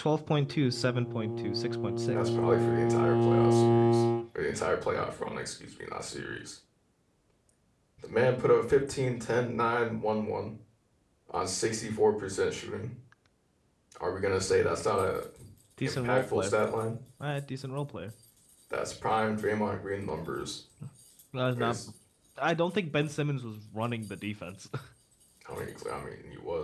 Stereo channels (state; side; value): identical; both; correlation 1.00